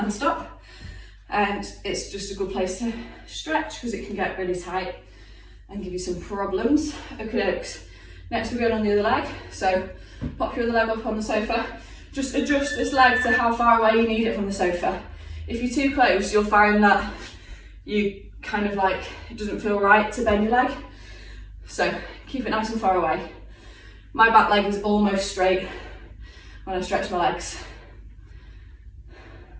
stop. And it's just a good place to stretch because it can get really tight and give you some problems. Okay, next we're going on the other leg. So pop your other leg up on the sofa. Just adjust this leg to how far away you need it from the sofa. If you're too close, you'll find that you kind of like, it doesn't feel right to bend your leg. So keep it nice and far away. My back leg is almost straight when I stretch my legs.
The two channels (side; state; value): both; identical; correlation 1.00